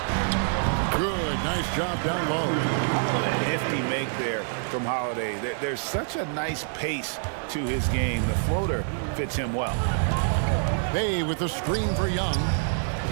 Good, nice job down low. Nifty make there from Holiday. There's such a nice pace to his game. The floater fits him well. Bay with the screen for Young.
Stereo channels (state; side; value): silent; left; digital silence